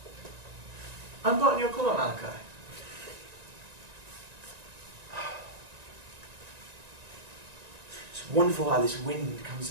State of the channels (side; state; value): left; late; 1.9 ms